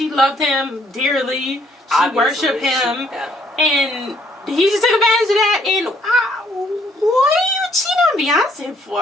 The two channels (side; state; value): both; normal; correlation 0.66